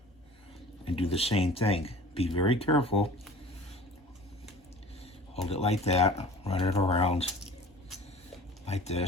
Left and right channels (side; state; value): both; normal; correlation 0.43